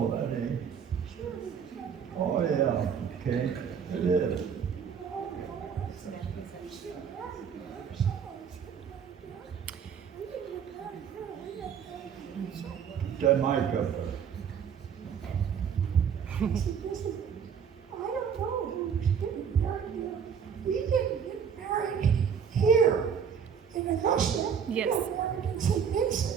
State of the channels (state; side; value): quieter; left; 7.2 dB